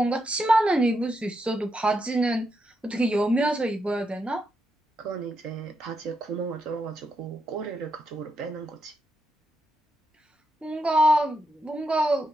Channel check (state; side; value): normal; both; correlation 0.83